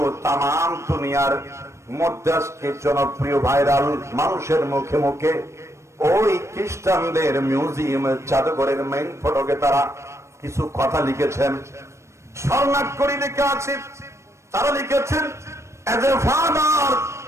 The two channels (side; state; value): left; late; 0.13 ms